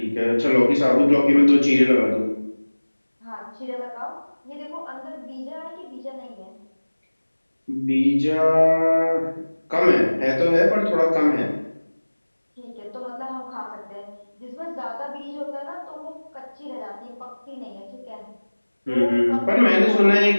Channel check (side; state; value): both; inverted; correlation -1.00